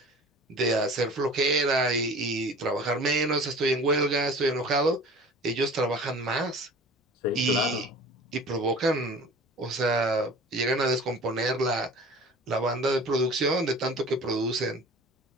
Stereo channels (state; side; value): normal; both; correlation 0.42